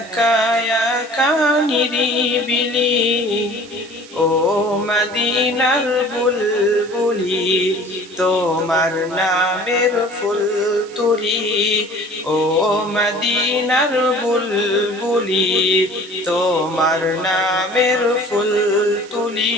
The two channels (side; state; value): right; noise; hiss, 20 dB below the sound